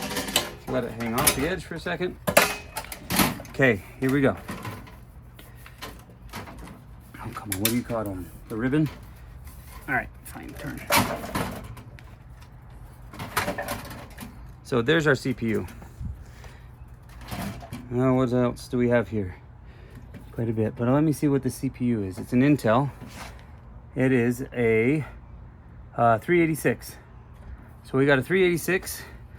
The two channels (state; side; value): identical; both; correlation 1.00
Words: Let it hang off the edge for a second. Okay, here we go. Oh, come on. What do you caught on? The ribbon? All right, fine. Turn. So there's our CPU. Now, what else do we have here? Quite a bit, but let me see what the CPU is. It's an Intel. It is a 386. So we got a 386,